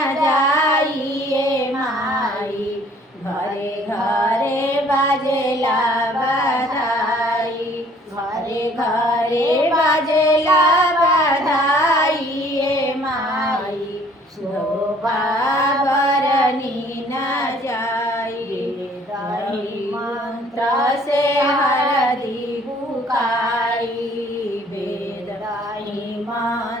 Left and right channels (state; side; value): normal; both; correlation 0.57